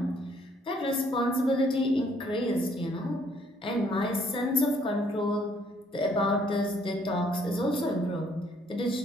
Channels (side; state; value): both; normal; correlation 0.65